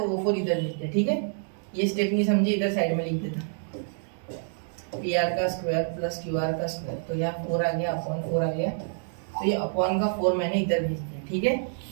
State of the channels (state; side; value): silent; left; digital silence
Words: वो 4 इधर भेज दिया। ठीक है, ये स्टेप नहीं समझी, इधर साइड में लिख देता, पी आर का स्क्वायर प्लस क्यू आर का स्क्वायर, तो यहाँ 4 आ गया, अपॉन 4 आ गया, तो ये अपॉन का 4 मैंने इधर भेज दिया। ठीक है,